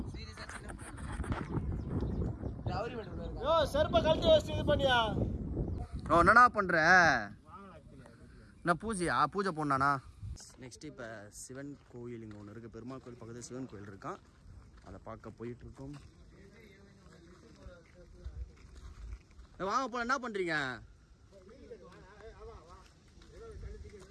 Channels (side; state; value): both; identical; correlation 1.00